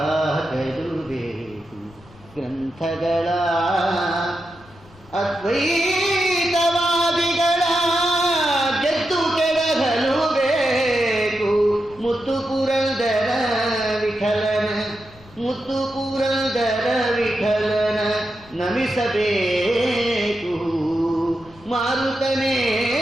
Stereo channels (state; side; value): noise; left; rumble, 25 dB below the sound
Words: ಬೇಕು ಗ್ರಂಥಗಳ. ಅದ್ವೈತವಾದಿಗಳ ಗೆದ್ದು ಕೆಳಗಲು ಬೇಕು, ಮುತ್ತು ಪುರಂದರ ವಿಠಲನ, ಮುತ್ತು ಪುರಂದರ ವಿಠಲನ ನಮಿಸಬೇಕು. ಮಾರುತನೇನೆಂದು